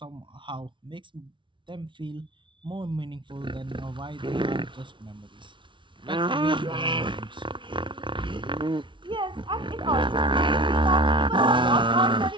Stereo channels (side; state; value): left; late; 0.24 ms